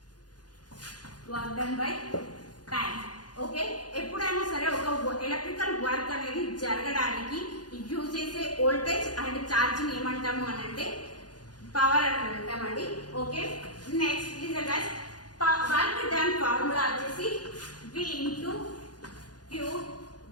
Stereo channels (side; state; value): right; late; 0.69 ms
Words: Work done by time. Okay, ఎప్పుడైనా సరే ఒక ఎలక్ట్రికల్ వర్క్ అనేది జరగడానికి యూజ్ చేసే వోల్టేజ్ అండ్ ఛార్జ్ ని ఏమంటాము అని అంటే పవర్ అని అంటామండి. Okay, next listen guys, work done formula వచ్చేసి V ఇంటూ Q.